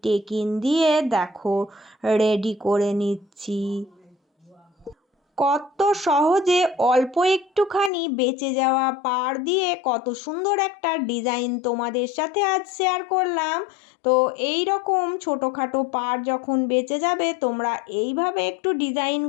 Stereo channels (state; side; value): drops out; right; at 7.9 s